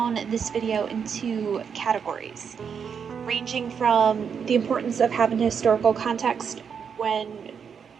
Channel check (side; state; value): left; quieter; 6.9 dB